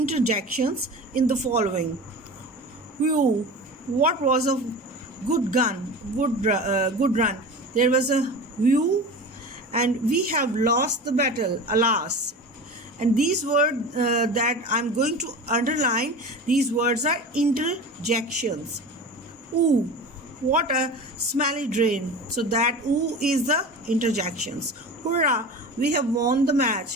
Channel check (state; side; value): normal; both; correlation 0.32